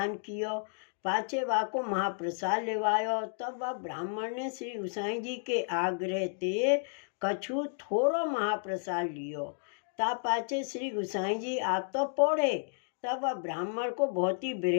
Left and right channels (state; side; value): silent; right; digital silence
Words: कियो, पाछे वा को महाप्रसाद लेवायो। तब वह ब्राह्मण ने श्री गोसाई जी के आग्रह ते कछु थोड़ो महाप्रसाद लियो। ता पाछे श्री गोसाई जी आप तो पौड़े। तब वह ब्राह्मण को बहुत ही